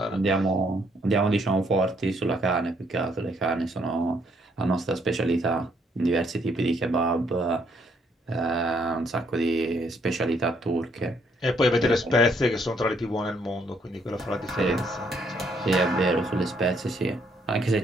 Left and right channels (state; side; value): normal; both; correlation 0.70